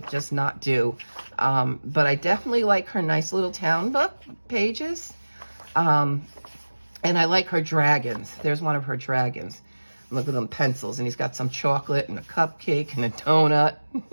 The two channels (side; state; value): both; inverted; correlation -1.00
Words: just not do. But I definitely like her Nice Little Town book pages. And I like her dragons. There's one of her dragons. Look at them pencils, and he's got some chocolate and a cupcake and a donut.